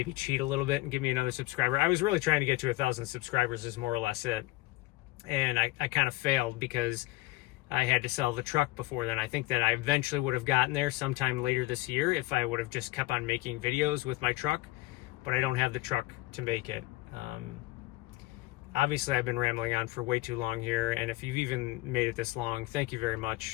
cheat a little bit and give me another subscriber. I was really trying to get to 1,000 subscribers, is more or less it. And I kind of failed because I had to sell the truck before then. I think that I eventually would have gotten there sometime later this year if I would have just kept on making videos with my truck, but I don't have the truck to make it. Obviously, I've been rambling on for way too long here, and if you've even made it this long, thank you very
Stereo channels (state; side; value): quieter; right; 19.1 dB